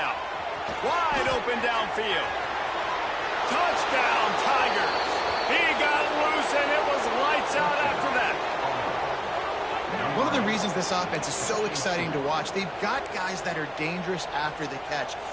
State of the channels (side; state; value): both; identical; correlation 1.00